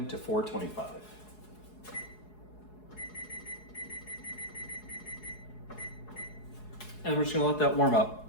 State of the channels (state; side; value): late; right; 4.7 ms